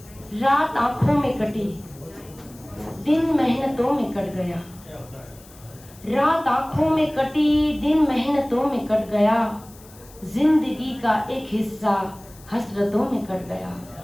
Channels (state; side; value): noise; left; hiss, 23 dB below the sound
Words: रात आंखों में कटी, दिन मेहनतों में कट गया, रात आंखों में कटी, दिन मेहनतों में कट गया, जिंदगी का एक हिस्सा हसरतों में कट गया।